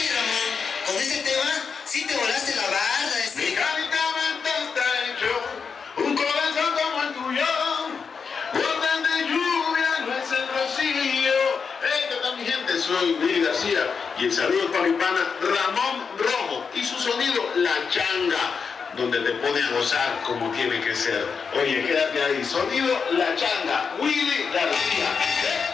Ramón, con ese tema sí te volaste la barda. Mi carita está hecho un corazón como el tuyo. Gotas de lluvia no es el rocío. ¿Qué tal, mi gente? Soy Willy García y el saludo para mi pana Ramón Rojo y su sonido La Changa, donde te pone a gozar como tiene que ser. Oye, quédate ahí. Sonido La Changa, Willy García.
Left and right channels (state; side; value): quieter; right; 5.7 dB